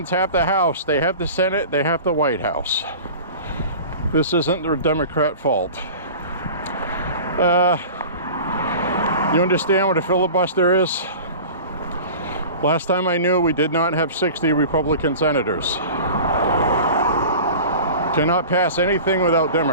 have the House, they have the Senate, they have the White House. This isn't the Democrat fault. You understand what a filibuster is? Last time I knew, we did not have 60 Republican senators. Cannot pass anything without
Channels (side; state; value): both; inverted; correlation -0.38